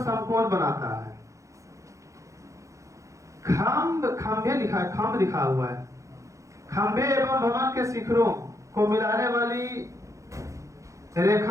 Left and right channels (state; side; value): late; left; 0.15 ms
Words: बनाता है। खंभे लिखा है, खंभ लिखा हुआ है। खंभे एवं भवन के शिखरों को मिलाने वाली